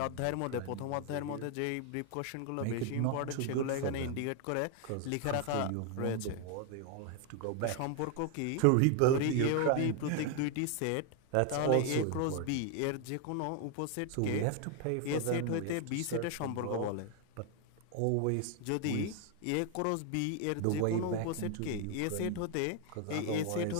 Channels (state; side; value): different; both; correlation 0.00